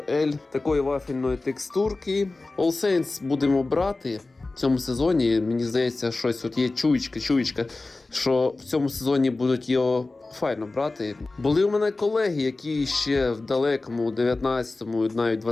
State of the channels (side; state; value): right; quieter; 3.3 dB